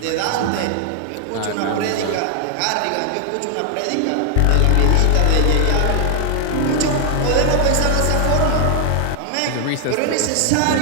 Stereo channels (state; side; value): different; both; correlation 0.00